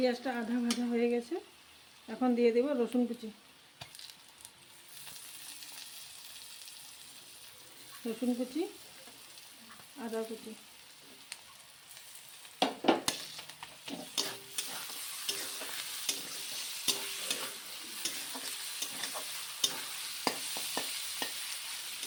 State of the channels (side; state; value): both; identical; correlation 1.00